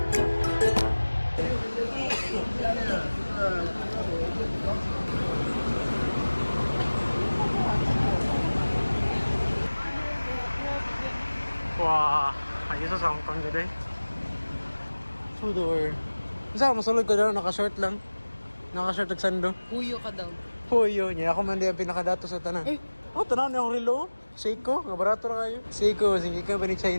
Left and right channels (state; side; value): inverted; both; correlation -1.00